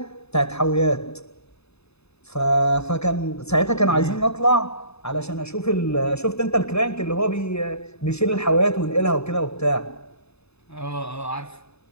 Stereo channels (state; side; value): late; right; 0.79 ms